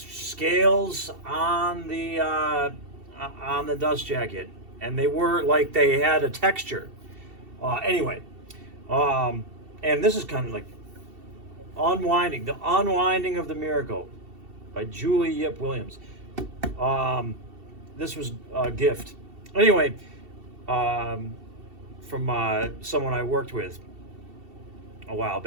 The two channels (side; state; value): left; late; 2.7 ms